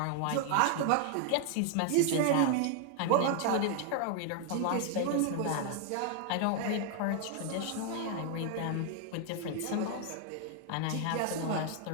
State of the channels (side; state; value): both; different; correlation 0.00